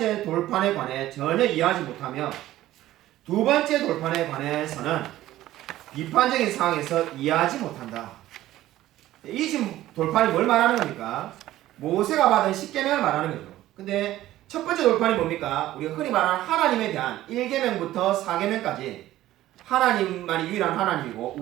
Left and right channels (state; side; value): quieter; left; 14.7 dB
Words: 돌판에 관해 전혀 이해하지 못하며 두 번째 돌판에 관해서는 비판적인 상황에서 이해하지 못한다. 이 지금 돌판이 뭘 말하는 겁니까? 모세가 받은 10계명을 말하는 거죠. 근데 첫 번째 돌판이 뭡니까? 우리가 흔히 말하는 하나님에 대한 1계명부터 4계명까지 하나님만이 유일한 하나님이고